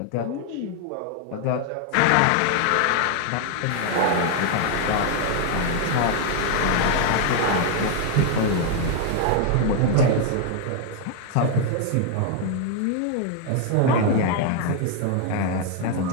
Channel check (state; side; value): different; both; correlation 0.00